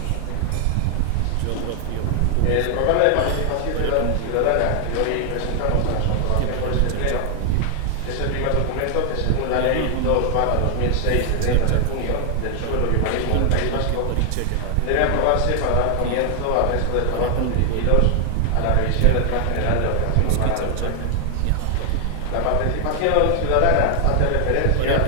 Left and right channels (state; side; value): different; both; correlation 0.00